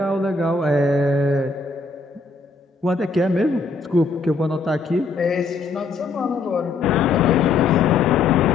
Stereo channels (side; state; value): right; quieter; 4.1 dB